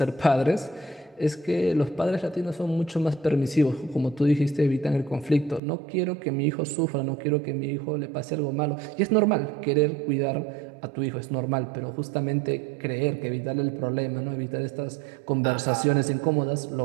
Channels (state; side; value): drops out; left; at 5.6 s